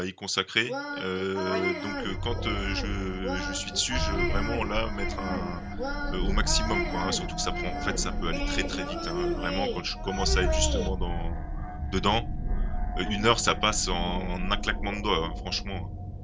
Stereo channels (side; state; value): both; identical; correlation 1.00